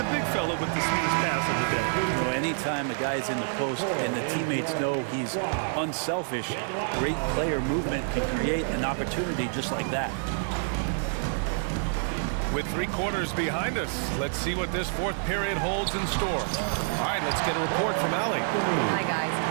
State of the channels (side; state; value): left; silent; digital silence